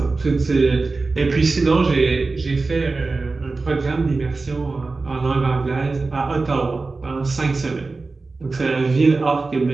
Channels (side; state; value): left; quieter; 3.8 dB